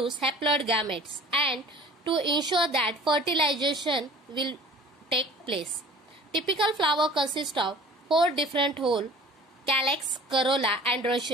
haploid gametes and to ensure that fertilization will take place. Typical flower consists of 4 different whole: calyx, corolla,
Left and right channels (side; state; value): both; normal; correlation 0.46